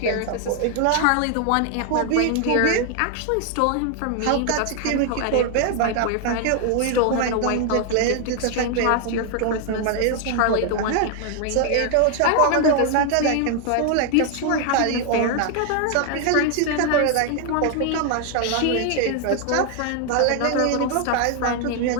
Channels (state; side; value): different; both; correlation 0.00